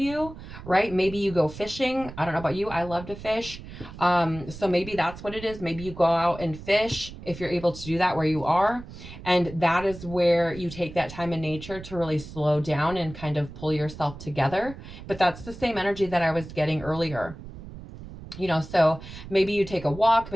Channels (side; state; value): right; noise; rumble, 14 dB below the sound